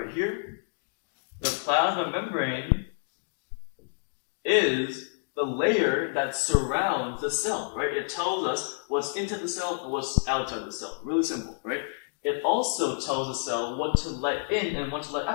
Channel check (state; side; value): silent; right; digital silence